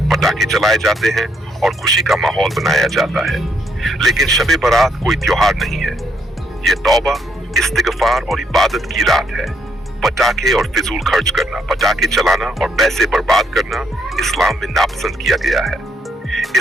पटाखे चलाए जाते हैं और खुशी का माहौल बनाया जाता है। लेकिन शब बारात कोई त्योहार नहीं है। ये तौबा, इस्तिगफार और इबादत की रात है। पटाखे और फिजूल खर्च करना, पटाखे चलाना और पैसे बर्बाद करना इस्लाम में नापसंद किया गया है।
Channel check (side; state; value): both; normal; correlation 0.73